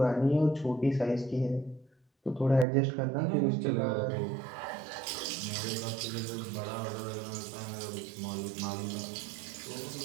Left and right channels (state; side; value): drops out; left; at 2.7 s